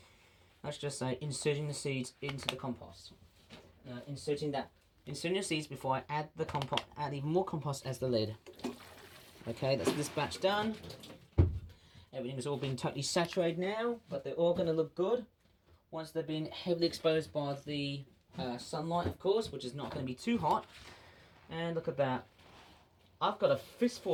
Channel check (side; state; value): both; identical; correlation 1.00